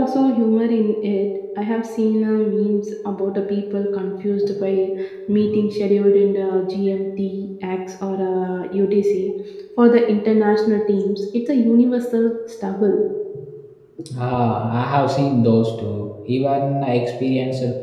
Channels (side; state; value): both; identical; correlation 1.00